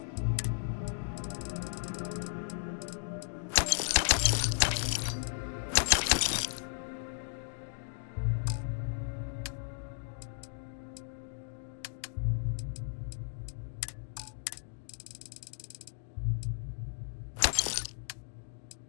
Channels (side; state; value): right; silent; digital silence